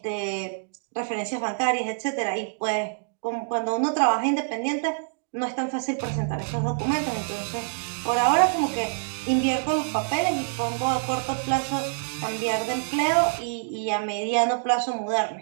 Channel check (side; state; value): left; silent; digital silence